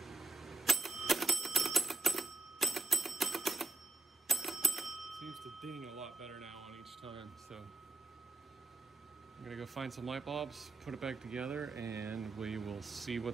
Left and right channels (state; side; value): quieter; left; 3.3 dB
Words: seems to ding a lot better now on each time, so I'm gonna go find some light bulbs, put it back together, and we will see